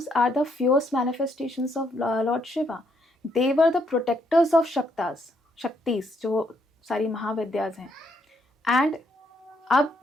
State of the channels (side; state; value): both; normal; correlation 0.73